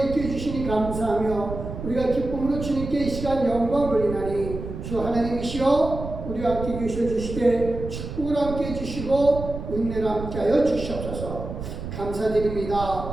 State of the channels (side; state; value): right; noise; rumble, 8 dB below the sound